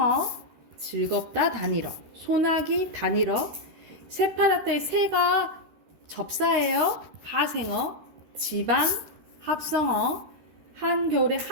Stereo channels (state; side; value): late; left; 13 ms